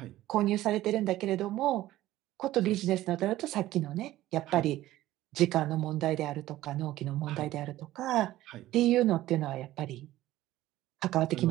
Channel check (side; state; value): left; quieter; 15.2 dB